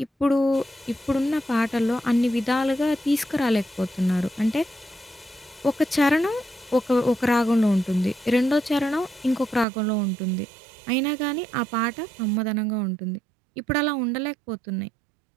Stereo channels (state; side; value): drops out; left; at 9.7 s